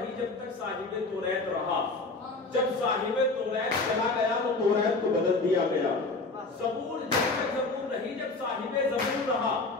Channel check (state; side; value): quieter; right; 3.5 dB